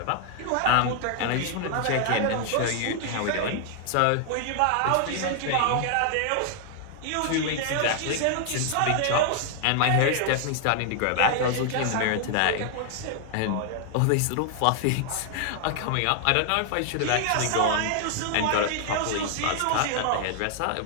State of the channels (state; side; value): different; both; correlation 0.00